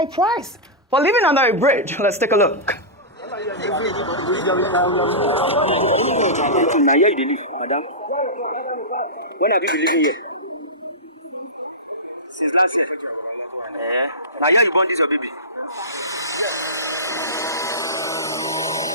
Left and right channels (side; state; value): both; normal; correlation -0.17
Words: price for living under a bridge. Let's take a look. Now here you live, madam. When have you been living here? Since last year. Now here you born this your baby.